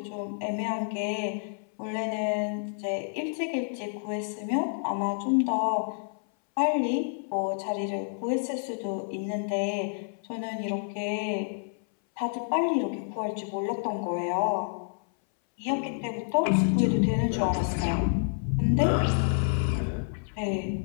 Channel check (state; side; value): silent; right; 59 dB below the other